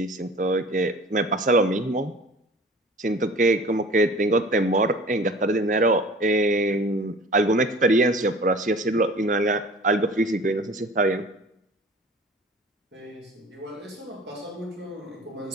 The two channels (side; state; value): both; normal; correlation 0.43